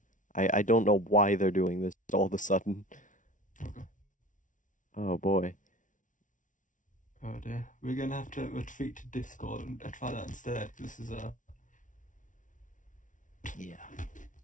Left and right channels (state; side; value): late; right; 0.37 ms